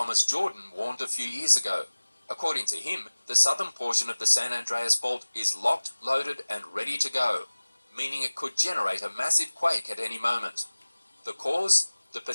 Jordan warned a few years ago. According to him, the southern portion of the San Andreas Fault is locked, loaded, and ready to go, meaning it could generate a massive quake at any moment. The cause? The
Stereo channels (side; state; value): both; inverted; correlation -1.00